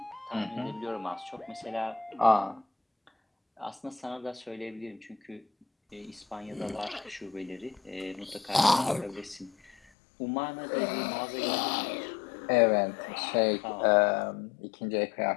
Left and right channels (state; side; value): drops out; right; at 9.8 s